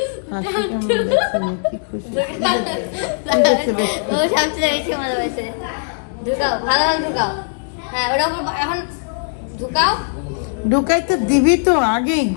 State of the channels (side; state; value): right; silent; digital silence